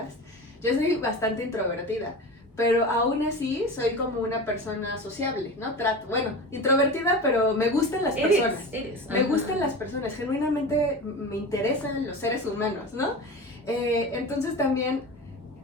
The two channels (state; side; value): normal; both; correlation 0.30